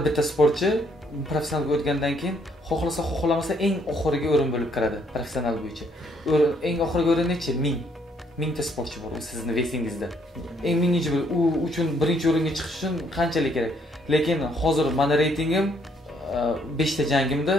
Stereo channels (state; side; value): normal; both; correlation 0.68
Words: bitta sportchi professionalga o'tgandan keyin xohlasa xohlamasa eng oxirgi o'rin bo'lib kiradi professional bo'yicha. Eng oxirgi o'rin nechi? 1000 ta sportchi bor sizning vesingizda. Eng minginchi u uchun birinchi o'ringa chiqish uchun qanchalik kerak? Lekin hozir meni reytingim 5 ta jangimda